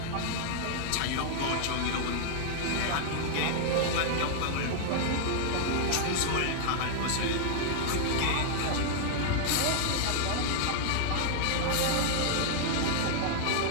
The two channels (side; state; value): both; different; correlation -0.01